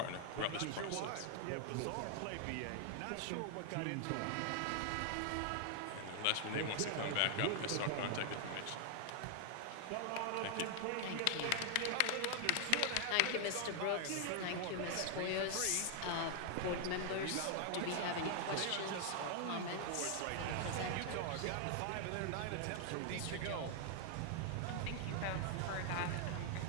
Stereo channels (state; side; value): different; both; correlation 0.00